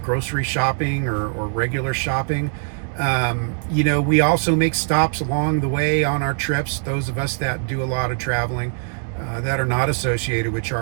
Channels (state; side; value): silent; left; 64 dB below the other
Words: shopping or regular shopping. We also make stops along the way on our trips. Those of us that do a lot of traveling that are not associated with